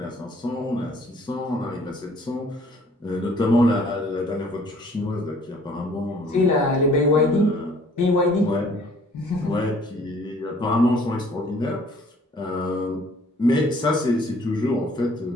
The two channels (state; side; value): normal; both; correlation 0.57